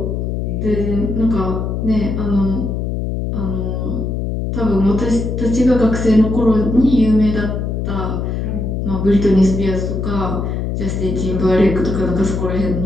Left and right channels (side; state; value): left; noise; hum, 2 dB below the sound